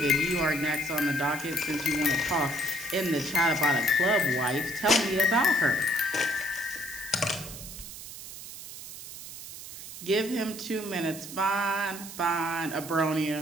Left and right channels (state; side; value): noise; right; hiss, 12 dB below the sound